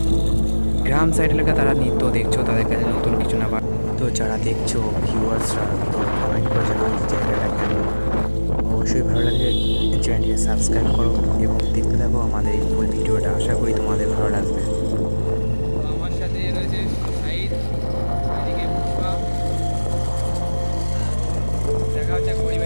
গ্রাম সাইড এলাকা তারা নিত্য দেখছো, তাদের কাছে নতুন কিছু না। বাট তো যারা দেখছো ভিউয়ার্সরা, তো কমেন্ট করে জানাও জায়গাটা কেমন। অবশ্যই ভালো লাগলে চ্যানেলটিকে সাবস্ক্রাইব করো এবং দেখতে থাকো আমাদের এই ফুল ভিডিওটা। আশা করি তোমাদের ভালো লাগবে। আমার সাথে রয়েছে সাইড, এদিকে পুষ্পা। দেখা হচ্ছে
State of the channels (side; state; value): both; inverted; correlation -1.00